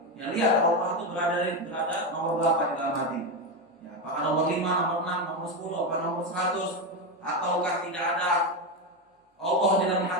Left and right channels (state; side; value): normal; both; correlation 0.12